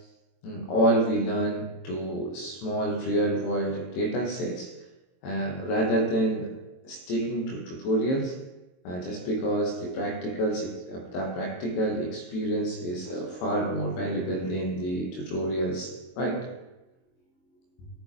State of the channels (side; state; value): right; late; 22 ms